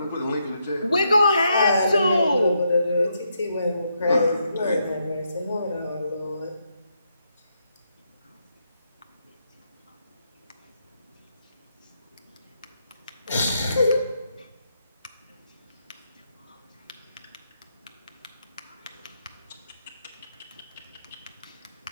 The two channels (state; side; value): inverted; both; correlation -0.79